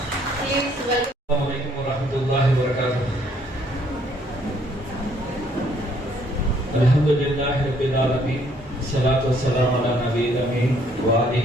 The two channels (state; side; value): normal; both; correlation 0.65